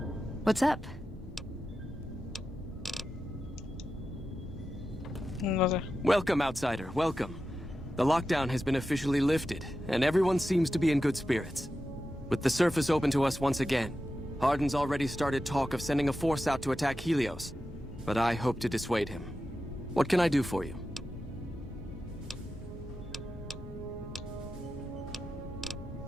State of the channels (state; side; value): normal; both; correlation 0.91